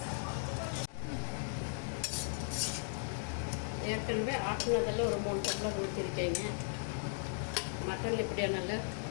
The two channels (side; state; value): right; silent; digital silence